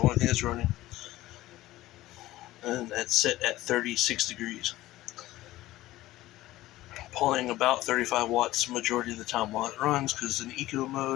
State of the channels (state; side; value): quieter; right; 16.4 dB